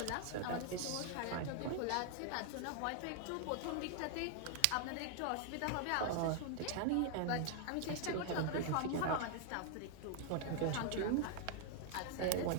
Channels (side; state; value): both; different; correlation 0.00